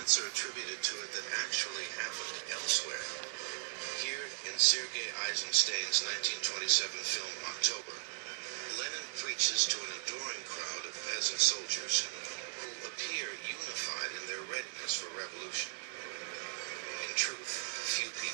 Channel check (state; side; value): silent; left; 53 dB below the other